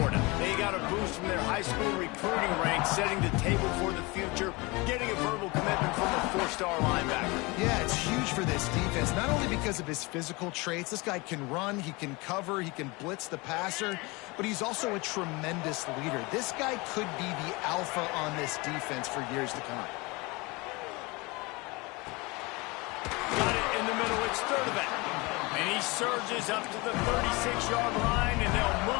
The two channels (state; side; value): quieter; right; 25.2 dB